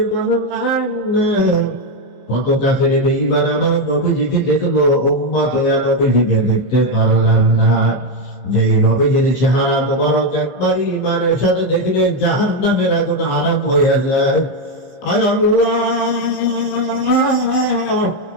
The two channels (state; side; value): late; right; 15 ms